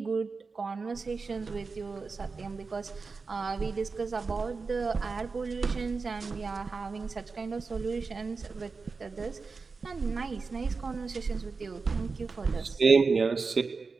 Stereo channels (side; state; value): left; quieter; 4.5 dB